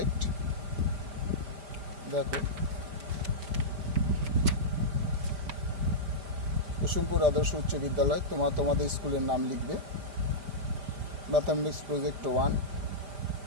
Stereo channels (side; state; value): left; late; 5.1 ms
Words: দেখো, কুসুমপুর আদর্শ উচ্চ বিদ্যালয়, তোমাদের স্কুলের নাম লিখবে। ম্যাথামেটিক্স প্রজেক্ট 1,